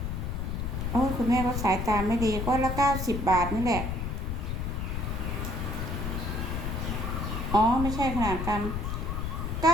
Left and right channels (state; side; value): noise; left; rumble, 3 dB below the sound